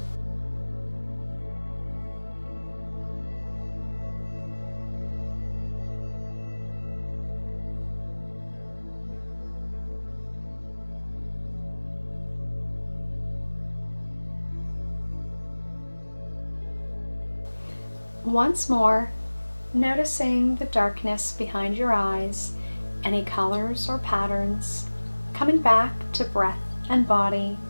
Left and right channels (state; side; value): inverted; both; correlation -1.00